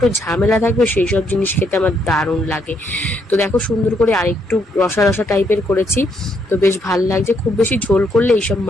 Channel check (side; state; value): both; normal; correlation 0.74